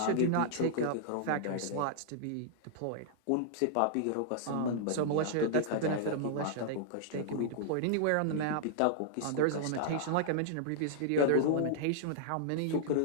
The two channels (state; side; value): different; both; correlation -0.01